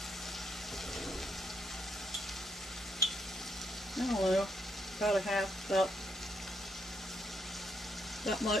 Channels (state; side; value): normal; both; correlation 0.75